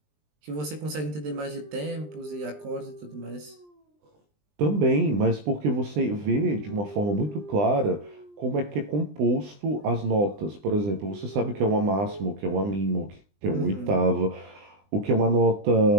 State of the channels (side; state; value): left; late; 20 ms